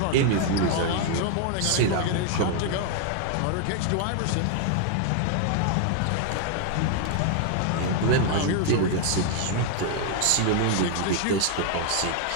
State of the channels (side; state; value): both; different; correlation 0.00